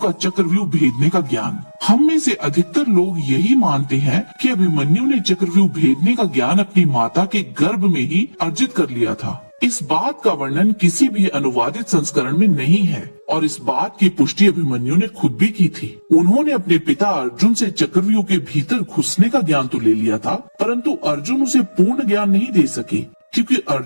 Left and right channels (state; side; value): inverted; both; correlation -1.00